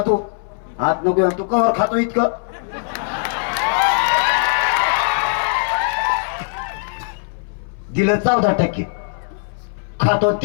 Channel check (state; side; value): silent; right; 61 dB below the other